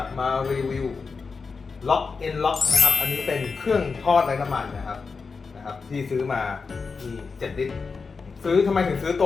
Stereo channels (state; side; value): quieter; right; 4.8 dB